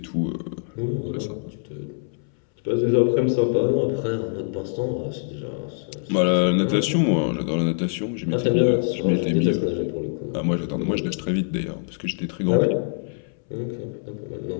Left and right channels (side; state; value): right; silent; 62 dB below the other